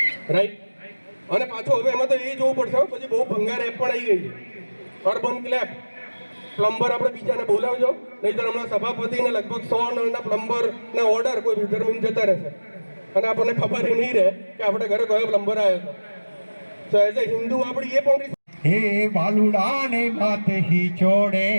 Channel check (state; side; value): inverted; both; correlation -1.00